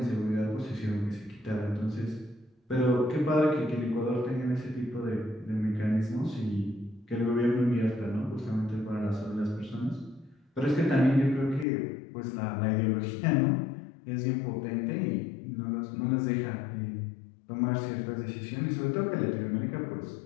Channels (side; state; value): right; drops out; at 11.7 s